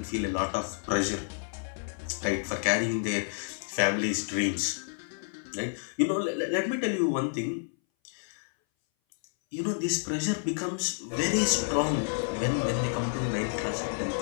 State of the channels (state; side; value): silent; right; 58 dB below the other